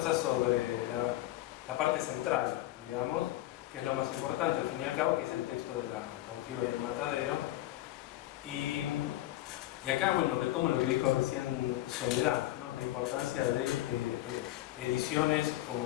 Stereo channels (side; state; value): right; quieter; 15.6 dB